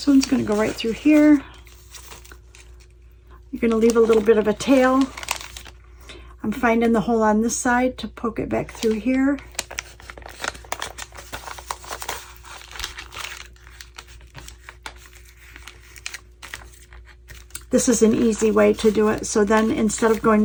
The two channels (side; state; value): both; identical; correlation 1.00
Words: one's going to go right through here. You're going to leave a little bit of a tail. I'm finding the hole on this side to poke it back through here. This is an easy way to do it. So then instead of going